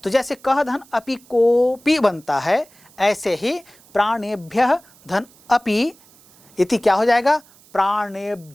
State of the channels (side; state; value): right; noise; hiss, 27 dB below the sound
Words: तो जैसे कह धन अपि कोपि बनता है, ऐसे ही प्राणेभ्यः धन अपि इति क्या हो जाएगा?